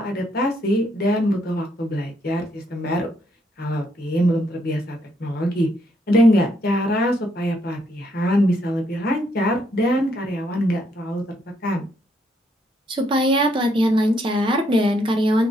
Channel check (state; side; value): normal; both; correlation 0.73